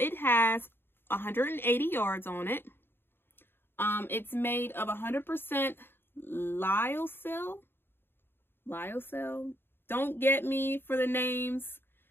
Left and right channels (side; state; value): right; late; 0.11 ms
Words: has 180 yards on it. It's made of 100% lyocell. Lyocell. Don't get me for the names.